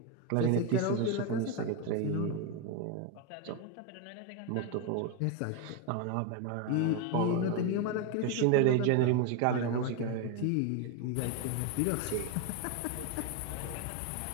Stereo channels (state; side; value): different; both; correlation 0.02